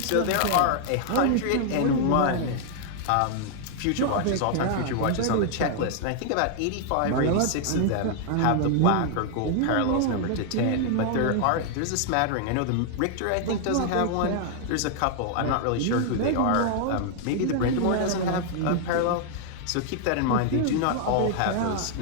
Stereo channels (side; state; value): both; different; correlation 0.00